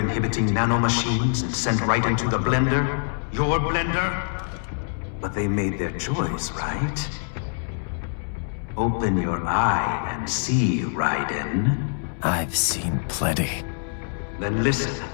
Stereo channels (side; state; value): right; silent; 62 dB below the other